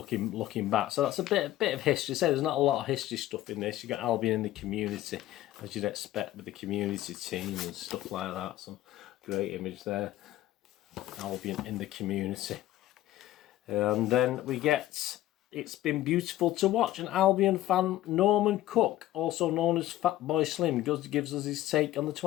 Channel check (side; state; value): right; quieter; 14.6 dB